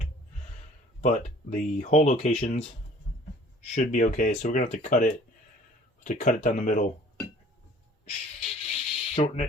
But the hole locations should be okay. So we're gonna have to cut it. Down the middle, shorten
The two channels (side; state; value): both; normal; correlation 0.51